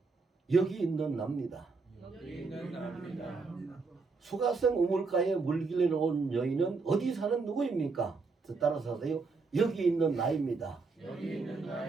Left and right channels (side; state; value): left; quieter; 4.3 dB